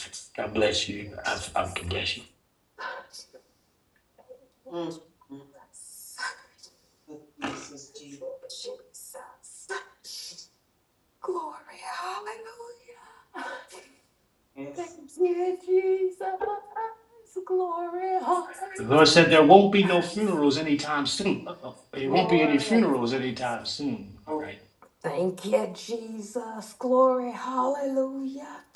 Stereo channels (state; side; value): identical; both; correlation 1.00